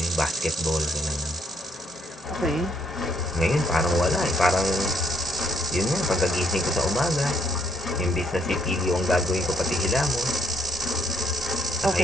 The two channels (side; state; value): both; normal; correlation 0.71